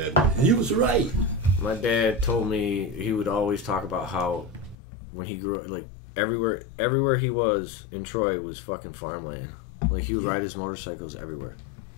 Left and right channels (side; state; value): right; drops out; at 4.8 s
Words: And he was right. My dad told me he would always talk about how when he grew up, like, everywhere he was in Troy was fucking farmland. Like, he would ride his motorcycles everywhere.